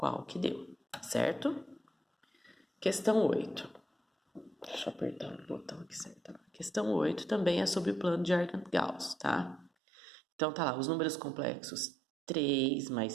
que deu, certo? Questão 8. Deixa eu apertar o botão aqui certo. Questão 8 também é sobre o plano de Argand-Gauss, tá? Então tá lá, os números complexos 3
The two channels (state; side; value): drops out; left; at 9.7 s